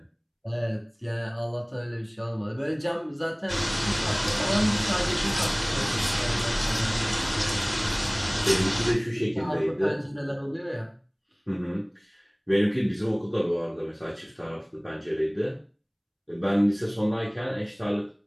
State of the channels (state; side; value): identical; both; correlation 1.00